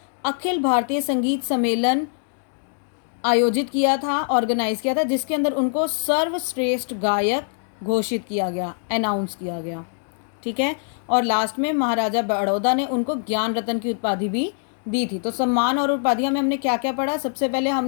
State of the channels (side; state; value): right; silent; 62 dB below the other